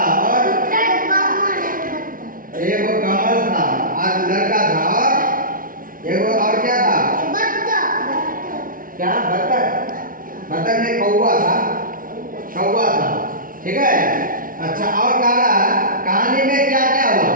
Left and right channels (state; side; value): late; left; 0.40 ms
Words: और एक वो कमल था, आज लड़का था और एक वो और क्या था? क्या? बत्तख। बत्तख ने कौवा था। ठीक है। अच्छा, और कहानी में क्या क्या हुआ?